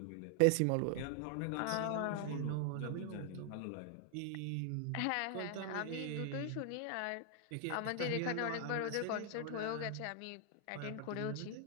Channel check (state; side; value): different; both; correlation 0.00